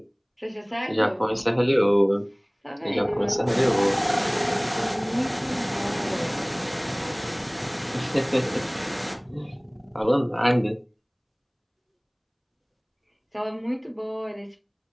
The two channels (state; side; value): identical; both; correlation 1.00